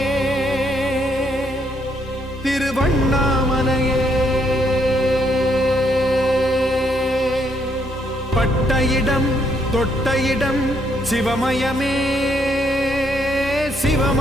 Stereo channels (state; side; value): normal; both; correlation 0.73